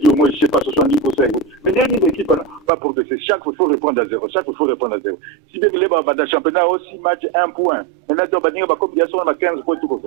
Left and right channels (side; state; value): left; drops out; at 2.7 s